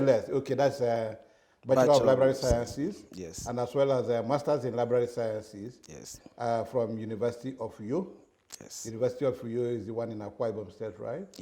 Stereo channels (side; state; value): both; identical; correlation 1.00